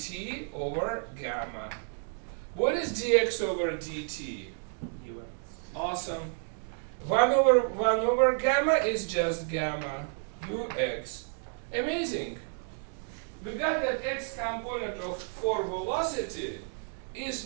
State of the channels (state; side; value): silent; left; 57 dB below the other